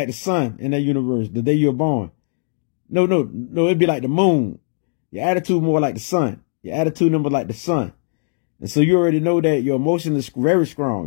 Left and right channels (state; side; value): silent; right; digital silence